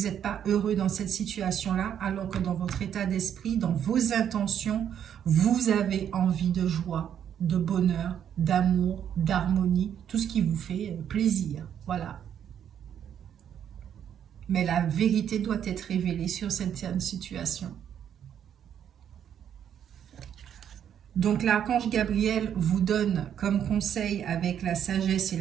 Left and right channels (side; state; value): left; quieter; 9.2 dB